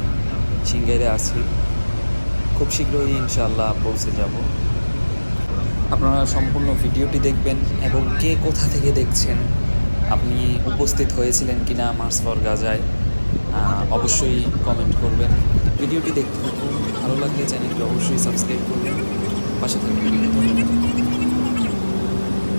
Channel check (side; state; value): both; inverted; correlation -1.00